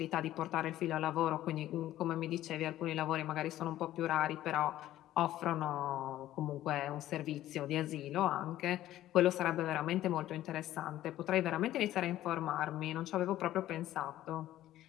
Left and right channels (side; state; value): right; quieter; 13.8 dB